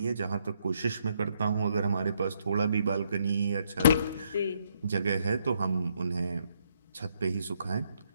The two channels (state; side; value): inverted; both; correlation -0.73